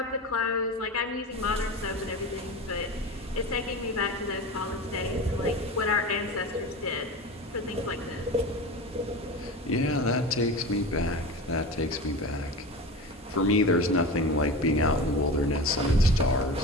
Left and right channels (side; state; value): both; normal; correlation 0.29